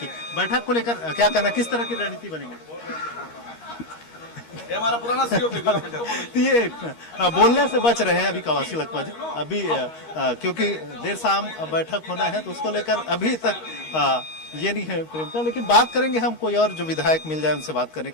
बैठक को लेकर क्या करना, किस तरह की रणनीति बनेगी? ये हमारा पुराना सीओ तो ये बोलने से बच रहे हैं अभी कवासी लक्ष्मण जी, अभी क्योंकि देर शाम बैठक होना है तो उसको लेकर अभी तक ये नहीं है प्रेमता। लेकिन बात करेंगे हम, कोई और जो विधायक मिल जाए उनसे बात करने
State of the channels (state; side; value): late; right; 13 ms